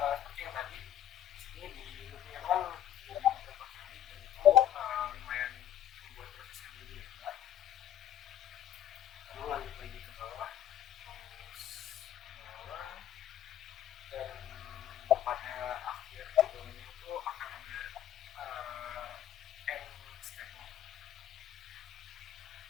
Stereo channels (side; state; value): right; quieter; 11.0 dB